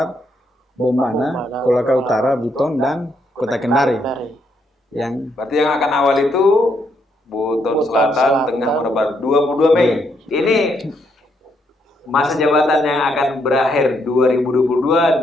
Bombana, Kolaka Utara, Buton, dan Kota Kendari. Berarti yang akan awal itu Buton Selatan, Tengah, Muna Barat, 22 Mei. Ini masa jabatan yang akan berakhir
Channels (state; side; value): normal; both; correlation 0.75